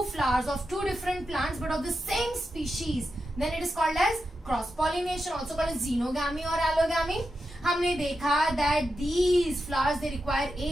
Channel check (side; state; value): both; normal; correlation 0.88